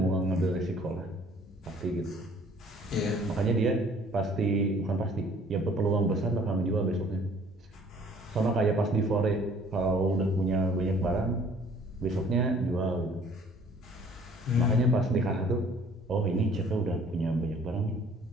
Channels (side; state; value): both; normal; correlation 0.55